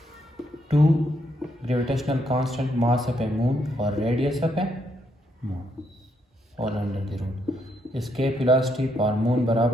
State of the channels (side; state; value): both; normal; correlation 0.76